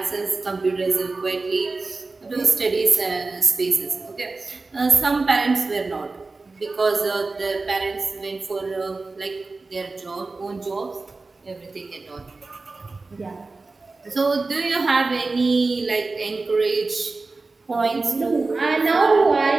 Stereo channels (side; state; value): left; quieter; 3.7 dB